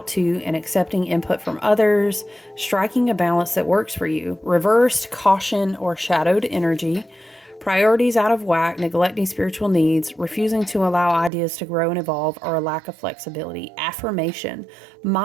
to and accepting input from others, striking a balance that works for you. Reversed, caution or shadowed energy. Priorities out of whack, neglecting spiritual needs, refusing to allow ideas to grow and evolve, or a lack of flexibility. Affirmation.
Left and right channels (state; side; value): drops out; left; at 11.3 s